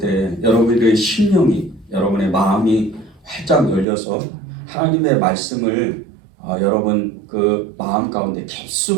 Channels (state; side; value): drops out; left; at 3.9 s